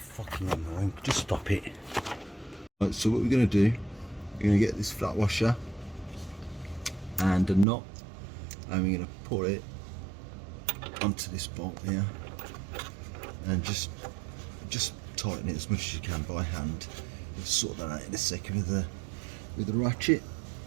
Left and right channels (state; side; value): drops out; left; at 7.7 s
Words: annoying. Just stop it. Right, so what we're going to do, we're going to get this flat washer and a knot, and we're going to put it onto this bolt here, and just tighten it as much as you can by hand. We'll sort that out in a second with the ratchet.